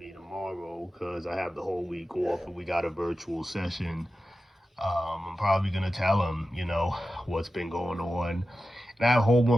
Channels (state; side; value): normal; both; correlation 0.93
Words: tomorrow because I have the whole week off and we got a virtual session. I'm probably gonna tell him, what's been going on. And I have a whole